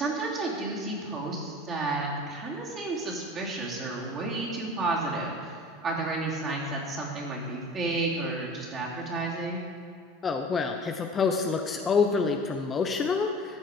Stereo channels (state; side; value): normal; both; correlation 0.41